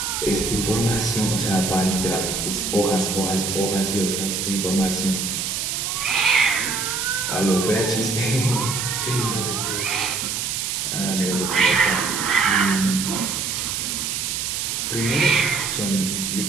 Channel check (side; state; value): right; noise; hiss, 2 dB below the sound